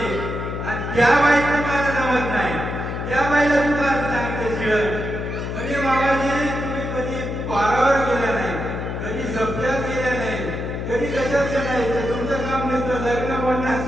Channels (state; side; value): noise; left; hum, 4 dB below the sound